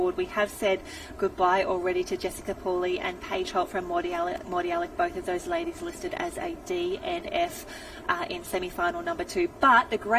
We have said goodbye already to Jessica Pooley and Paige Holt from Morty Alec, both of those ladies listed as a DNF in semi-final number 2. But the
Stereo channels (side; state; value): both; identical; correlation 1.00